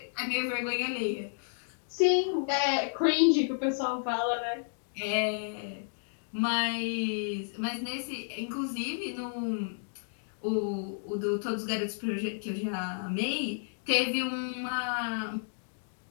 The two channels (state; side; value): silent; right; digital silence